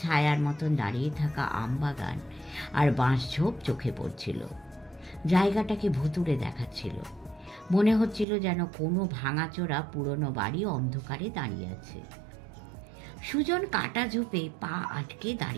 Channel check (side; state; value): left; drops out; at 8.2 s